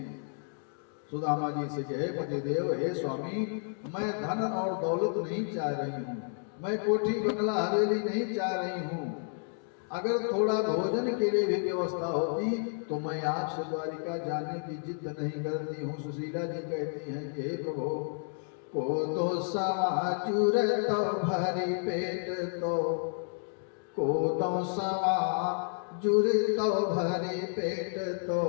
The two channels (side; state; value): right; silent; 57 dB below the other